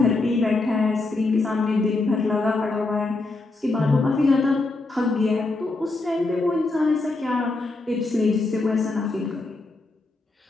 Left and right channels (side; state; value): right; quieter; 3.3 dB